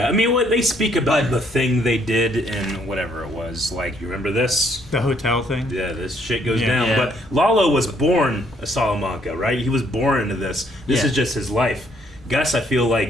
I mean, what they speak about the thing they did in whatever it was. Like, you remember this? The hotel thing? Yeah, this shit goes Yeah. down. Yeah. But Lalo was born a Salamanca, right? He was born into this. This Yeah. is just his life. Gus, I feel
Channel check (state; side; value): normal; both; correlation 0.68